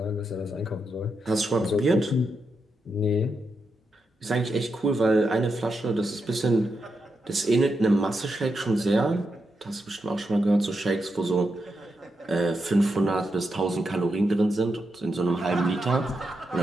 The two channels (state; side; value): normal; both; correlation 0.85